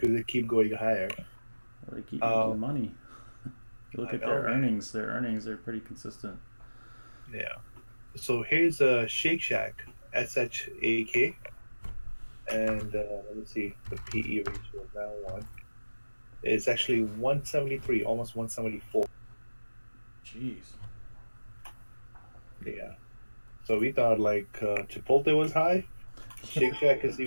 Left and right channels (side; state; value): both; inverted; correlation -1.00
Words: they keep going higher. Well, they keep making money. You look at their man. earnings. Their earnings are pretty consistent. Yeah. So here's a Shake Shack, SHAK, and let me see the PE ratio of that one. It's actually 173, almost 174. Jeez. Yeah. So we thought like Chipotle was high. Shake Shack is